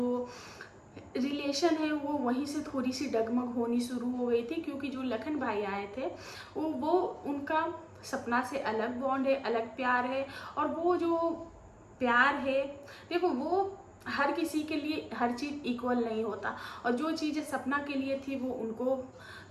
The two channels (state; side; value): identical; both; correlation 1.00